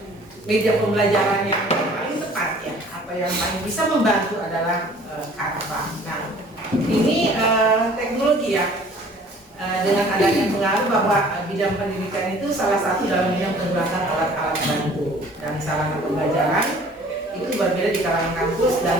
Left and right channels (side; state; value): both; normal; correlation 0.51